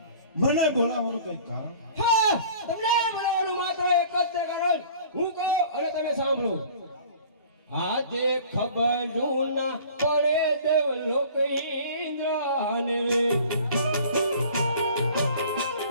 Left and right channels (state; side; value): inverted; both; correlation -0.47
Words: મને બોલાવવાનું કઈ કારણ? હા તમને બોલાવવાનું માત્ર એક જ તે કારણ હું કહું અને તમે સાંભળો. આજે ખબર જૂના પડે દેવ લોક ઇન્દ્રને રે